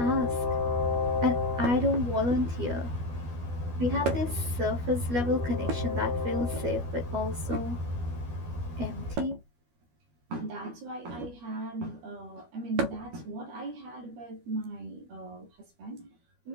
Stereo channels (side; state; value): left; late; 12 ms